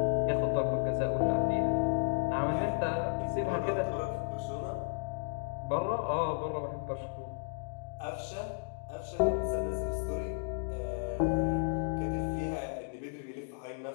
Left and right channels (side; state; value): right; silent; digital silence